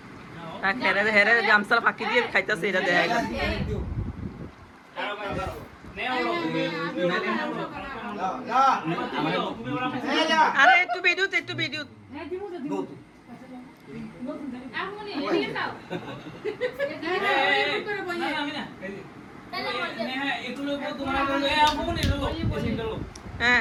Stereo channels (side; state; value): both; identical; correlation 1.00